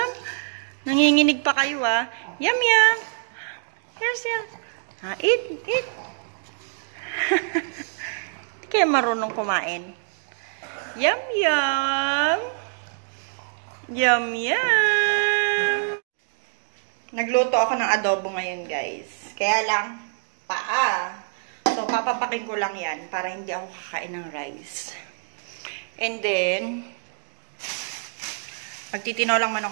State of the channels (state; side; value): silent; left; digital silence